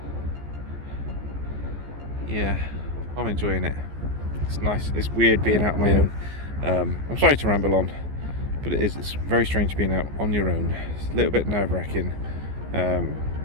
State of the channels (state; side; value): late; left; 14 ms